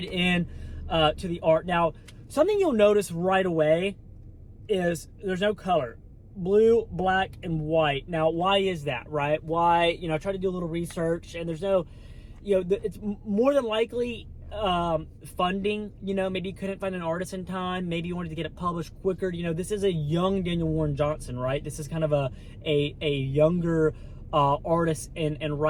in. to the art. Now, something you'll notice right away is there's no color. Blue, black, and white. Now, why is that, right? Why, you know, I tried to do a little research, and there's no, you know, it's more than likely funding. You know, maybe you couldn't find an artist in time. Maybe you wanted to get it published quicker. You know, this is a young Daniel Warren Johnson, right? This is kind of a younger artist and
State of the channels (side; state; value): both; identical; correlation 1.00